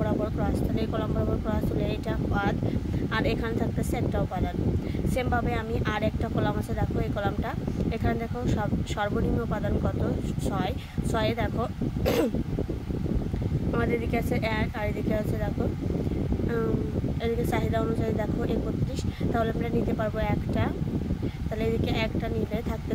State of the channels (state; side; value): identical; both; correlation 1.00